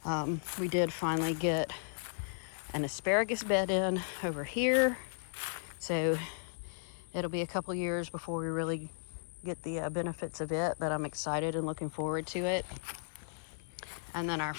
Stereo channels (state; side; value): silent; right; 54 dB below the other